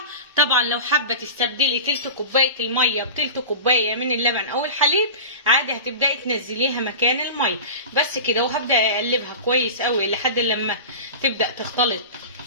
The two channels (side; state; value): both; inverted; correlation -0.31